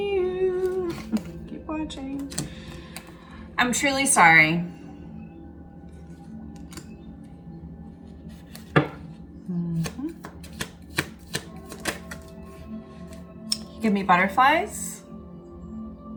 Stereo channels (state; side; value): identical; both; correlation 1.00